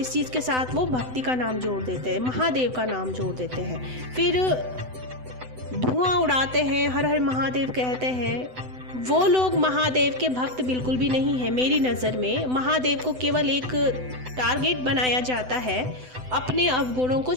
चीज़ के साथ वो भक्ति का नाम जोड़ देते हैं, महादेव का नाम जोड़ देते हैं, फिर धुआं उड़ाते हैं, हर हर महादेव कहते हैं। वो लोग महादेव के भक्त बिल्कुल भी नहीं है। मेरी नज़र में महादेव को केवल एक टारगेट बनाया जाता है अपने अवगुणों को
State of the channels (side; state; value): left; late; 7.9 ms